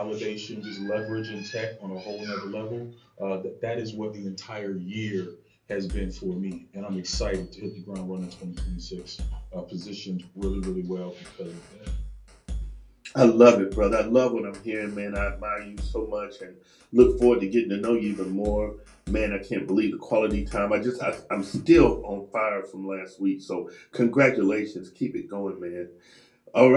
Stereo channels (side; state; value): both; identical; correlation 1.00